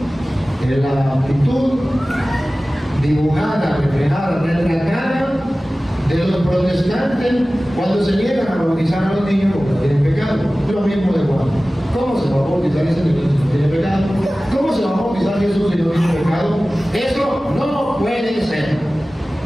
En la actitud dibujada, reflejada, retratada de los protestantes cuando se niegan a bautizar a los niños porque tienen pecado. Es lo mismo de Juan. ¿Cómo se va a bautizar ese niño si no tiene pecado? ¿Cómo se va a bautizar Jesús si no tiene pecado? Eso no puede ser.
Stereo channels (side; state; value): both; normal; correlation 0.97